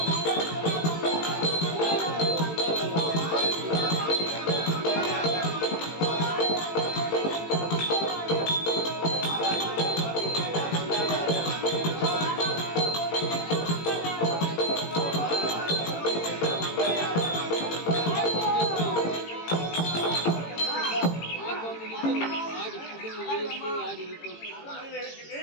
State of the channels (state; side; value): late; right; 18 ms